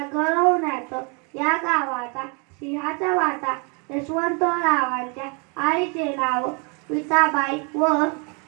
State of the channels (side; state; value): left; quieter; 33.7 dB